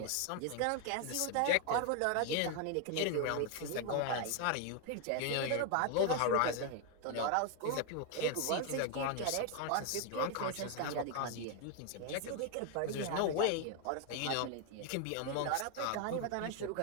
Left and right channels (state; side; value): different; both; correlation 0.01